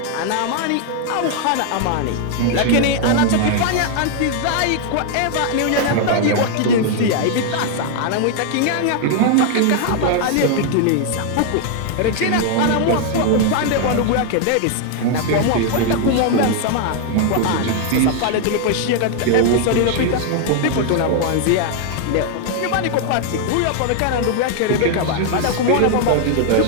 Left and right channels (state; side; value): different; both; correlation 0.00